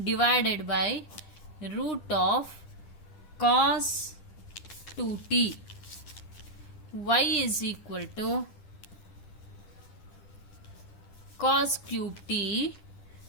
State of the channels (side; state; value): right; late; 10 ms